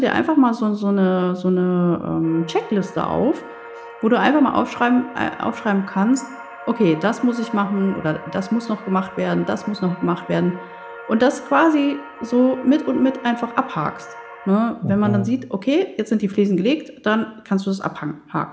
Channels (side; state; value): both; identical; correlation 1.00